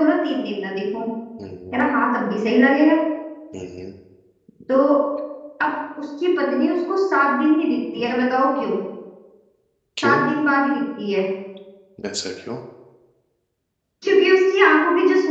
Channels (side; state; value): both; identical; correlation 1.00